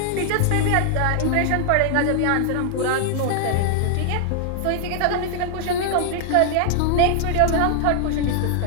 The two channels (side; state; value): both; different; correlation 0.00